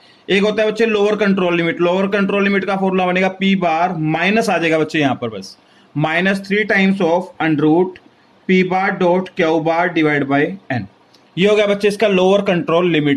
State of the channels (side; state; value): both; identical; correlation 1.00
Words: एक होता है बच्चे lower control limit. Lower control limit का फॉर्मूला बनेगा पी बार माइनस आ जाएगा बच्चे यहाँ पर बस -3 times of under root P bar dot Q bar divide by N. ये हो गया बच्चे इसका लोअर कंट्रोल